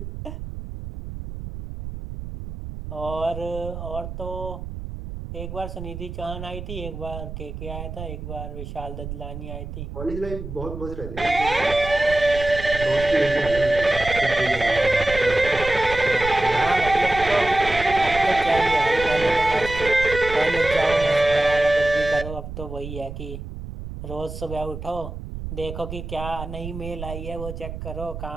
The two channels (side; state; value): right; noise; rumble, 9 dB below the sound